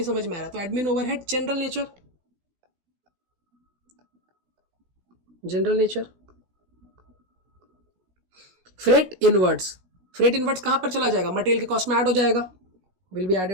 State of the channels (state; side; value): late; left; 16 ms